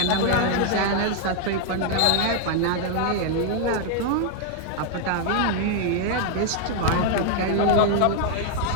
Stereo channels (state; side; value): different; both; correlation 0.00